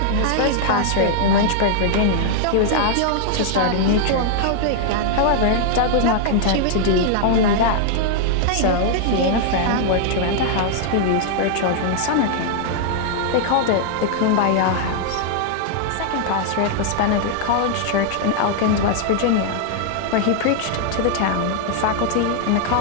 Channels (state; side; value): different; both; correlation -0.01